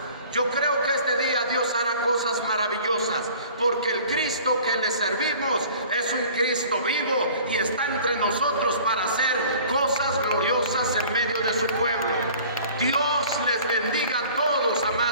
Yo creo que este día Dios hará cosas maravillosas, porque el Cristo que le servimos es un Cristo vivo y está entre nosotros para hacer cosas gloriosas en medio de su pueblo. Dios les bendiga a todos,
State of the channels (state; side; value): inverted; both; correlation -0.47